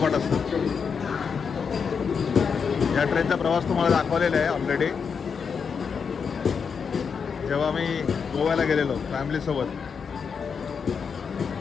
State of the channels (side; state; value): right; quieter; 6.2 dB